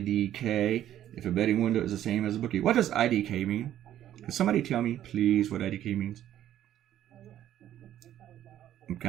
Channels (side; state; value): left; quieter; 11.8 dB